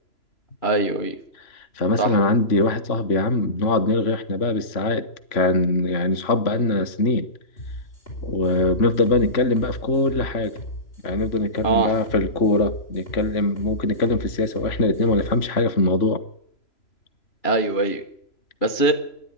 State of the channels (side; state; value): right; late; 3.0 ms